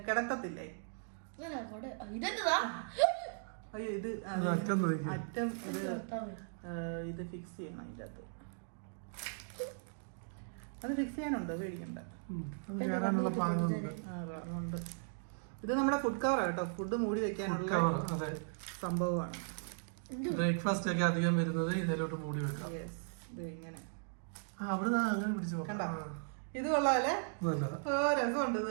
കിടത്തത്തില്ലേ? അയ്യോ, ഇത് അറ്റം ഇത് ഫിക്സ് ചെയ്യണം. അതിൻ്റെ അകത്ത് അത് ഫിക്സ് ചെയ്യാനുണ്ടോ? പേടിക്കണ്ട. ഇത് നമ്മുടെ ഫുഡ് കവർ കേട്ടോ. ഫുഡ് മൂടി വെക്കാനുള്ള സംഭവമാണ്. ബ്രേക്ക്ഫാസ്റ്റ് ഒക്കെ അധികം വരുന്നത് ഇതിലോട്ട് മൂടി വെക്കാം. ഇങ്ങനെ കണ്ടോ, ഇത് കൊള്ളാല്ലേ? രസമുണ്ട് ഇത്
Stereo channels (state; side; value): silent; left; digital silence